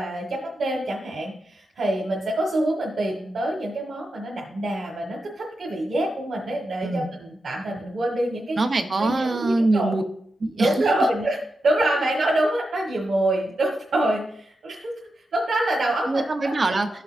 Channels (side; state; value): both; normal; correlation 0.88